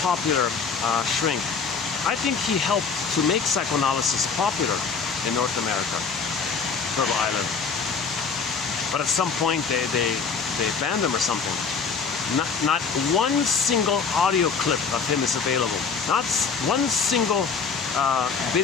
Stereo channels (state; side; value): quieter; right; 5.5 dB